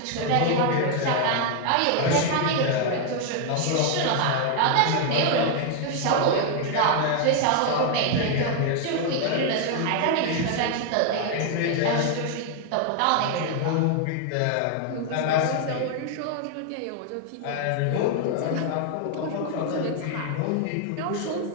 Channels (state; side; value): different; both; correlation 0.00